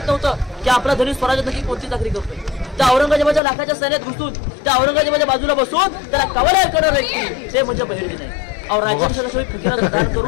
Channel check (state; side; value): drops out; right; at 3.4 s